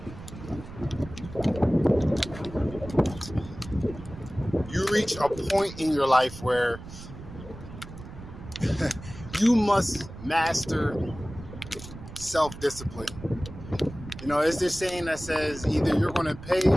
you reach a point in your life where you must master self-discipline. You know, it's this saying that says either you're going to pay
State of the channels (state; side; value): noise; right; rumble, 14 dB below the sound